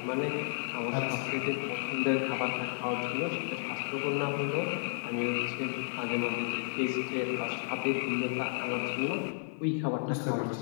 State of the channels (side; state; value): right; silent; 56 dB below the other